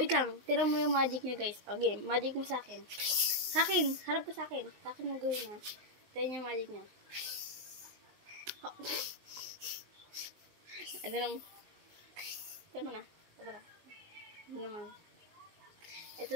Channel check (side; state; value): left; late; 19 ms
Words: lang. Tira mo yung magic niya guys. Okay, magic mo sa akin. Sa akin. Harap ka sa akin. Sa akin mo gawin ha. Tira niya yung magic niya. Ito naman. Ito naman na. Ito naman. Ito